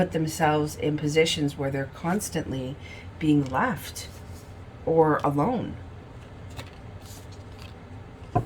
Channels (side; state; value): both; identical; correlation 1.00